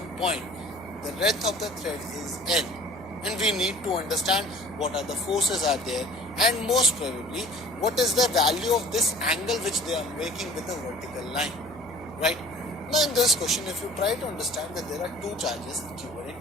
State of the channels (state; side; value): noise; left; hum, 23 dB below the sound